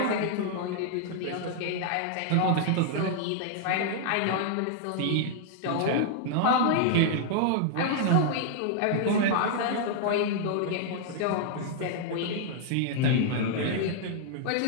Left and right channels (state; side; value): different; both; correlation -0.01